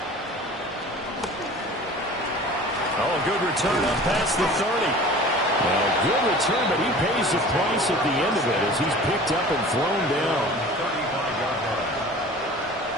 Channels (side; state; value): both; normal; correlation 0.42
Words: Oh, a good return up past the 30. Well, good return, but he pays the price at the end of it as he's picked up and thrown down. 35-yard line.